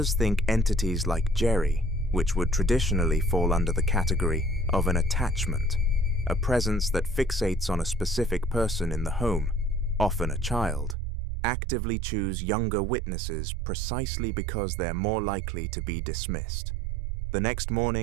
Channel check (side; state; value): left; drops out; at 11.0 s